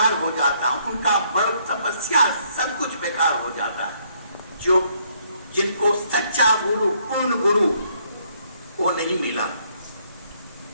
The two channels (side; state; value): both; inverted; correlation -0.68